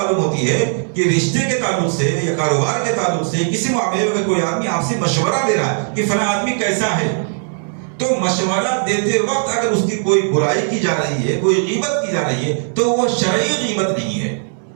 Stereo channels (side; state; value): left; silent; digital silence